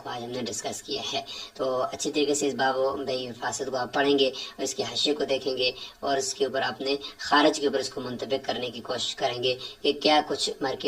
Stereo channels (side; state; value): both; identical; correlation 1.00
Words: آج ہم نے ڈسکس کیا ہے. تو اچھی طریقے سے اس باب و بے فاصل کو آپ پڑھیں گے اور اس کے حاشیے کو دیکھیں گے اور اس کے اوپر اپنے خارج کے اوپر اس کو منطبق کرنے کی کوشش کریں گے کہ کیا کچھ